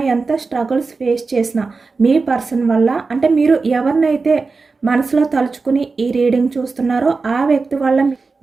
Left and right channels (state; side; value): quieter; left; 4.2 dB